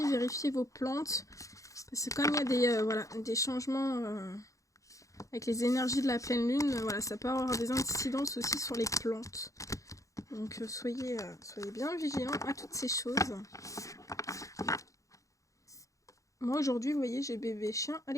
vérifiez vos plantes. Parce que comme il y a des changements avec les énergies de la pleine lune, voilà, ça peut avoir des incidences aussi sur les plantes. Donc soyez bien vigilants à toutes ces choses. Moi aujourd'hui, vous voyez, j'ai bébé chien, elle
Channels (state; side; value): late; right; 0.16 ms